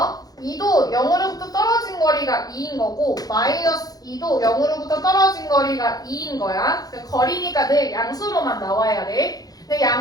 2도 0으로부터 떨어진 거리가 2인 거고 마이너스 2도 0으로부터 떨어진 거리가 2인 거야. 거리니까 늘 양수로만 나와야 돼. 근데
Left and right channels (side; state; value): right; late; 0.18 ms